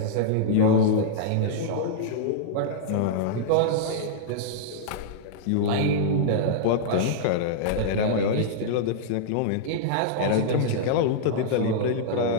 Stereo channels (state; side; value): different; both; correlation -0.02